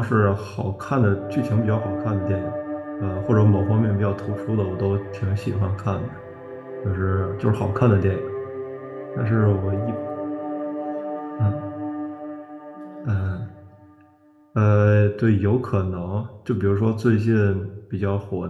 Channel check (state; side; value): identical; both; correlation 1.00